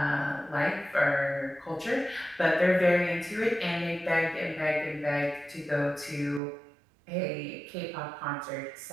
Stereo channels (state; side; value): drops out; left; at 6.4 s